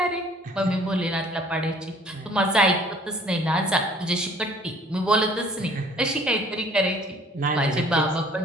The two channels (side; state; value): both; normal; correlation 0.54